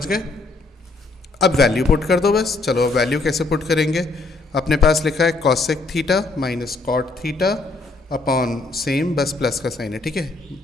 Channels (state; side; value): quieter; right; 3.5 dB